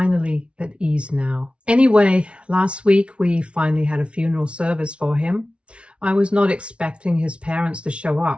at ease now. Anyway, last week we finally had a funeral service for him. I was not expecting his parents to show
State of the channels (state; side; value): late; left; 0.060 ms